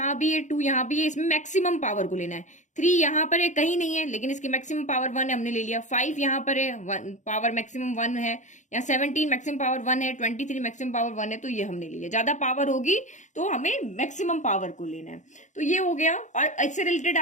भी है, 2 यहाँ भी है, इसमें मैक्सिमम पावर को लेना है। 3 यहाँ पर है, कहीं नहीं है लेकिन इसकी मैक्सिमम पावर 1 है, हमने ले लिया। 5 यहाँ पर है, पावर मैक्सिमम 1 है। यहाँ 17 मैक्सिमम पावर 1 है, 23 मैक्सिमम पावर 1 है, तो ये हमने ले लिया। ज्यादा पावर होगी तो हमें मैक्सिमम पावर को लेना है। तो ये हो गया। और इससे रिलेटेड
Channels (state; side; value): late; right; 0.35 ms